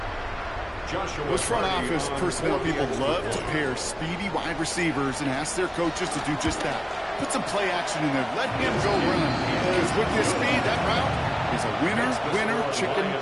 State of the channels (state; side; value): identical; both; correlation 1.00